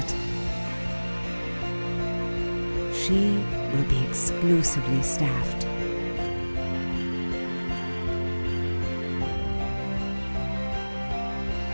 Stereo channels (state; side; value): inverted; both; correlation -1.00